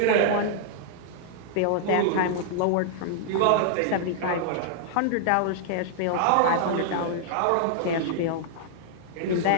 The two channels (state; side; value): different; both; correlation -0.01